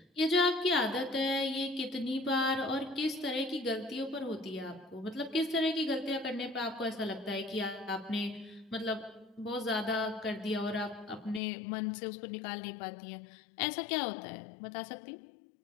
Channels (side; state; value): right; drops out; at 11.4 s